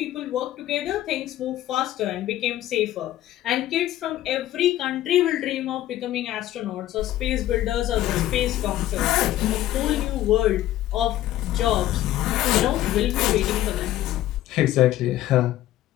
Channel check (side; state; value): right; quieter; 13.9 dB